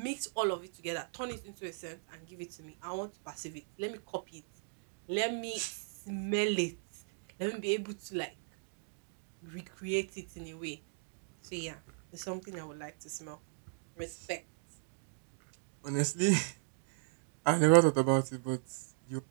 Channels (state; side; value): silent; left; digital silence